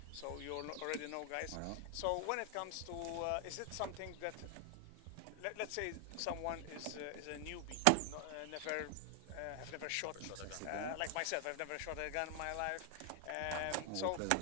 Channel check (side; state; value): both; different; correlation 0.00